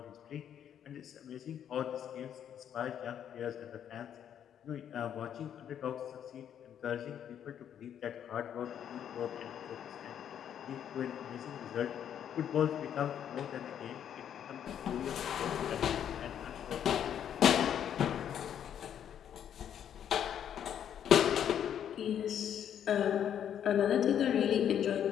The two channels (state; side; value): quieter; right; 9.4 dB